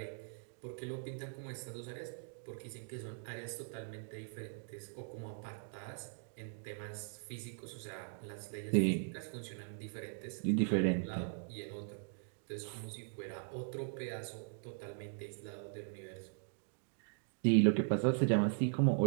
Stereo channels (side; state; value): left; silent; digital silence